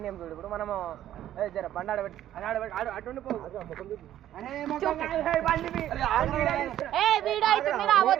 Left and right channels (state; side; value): quieter; left; 12.2 dB